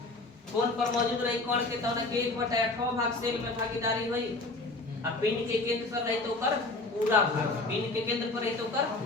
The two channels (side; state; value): right; quieter; 3.1 dB